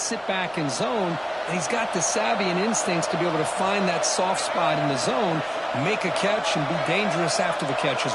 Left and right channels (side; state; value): both; identical; correlation 1.00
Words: back in zone, and he's got the savvy and instincts to be able to find that soft spot in the zone, make a catch, and be dangerous after the catch